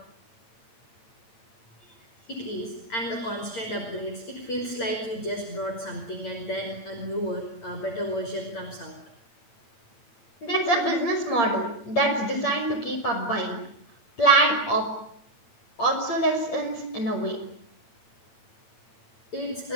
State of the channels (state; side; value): late; right; 8.9 ms